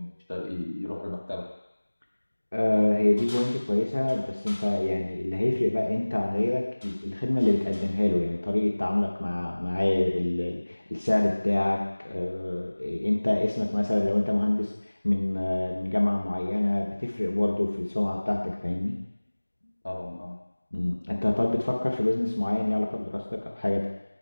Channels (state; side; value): inverted; both; correlation -1.00